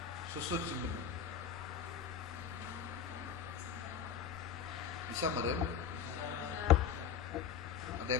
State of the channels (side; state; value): right; quieter; 7.6 dB